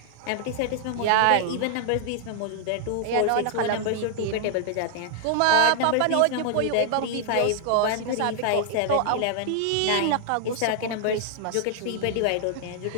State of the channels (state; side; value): different; both; correlation 0.00